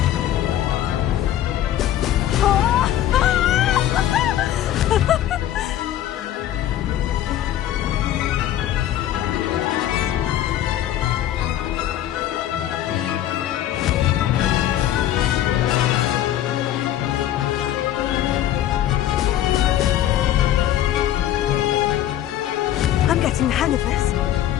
I'm getting the hang of this.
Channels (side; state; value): right; quieter; 12.1 dB